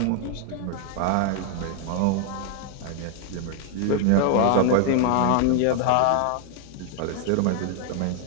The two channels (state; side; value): different; both; correlation 0.00